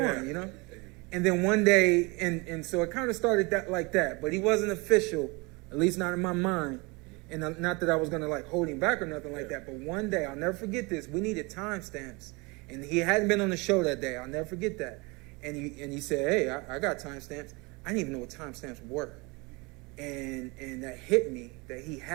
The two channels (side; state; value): left; quieter; 27.0 dB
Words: you know. And then one day, and so it kind of started like that, but he wasn't official, at least not in my mind. And not that I was going to like hold him back or nothing like that, but one day, I'll never forget this, we needed timestamps. And he hadn't been on the show that day. I'll never forget that. And he said, hey, I got timestamps. I didn't even know what timestamps were. And that hit me that he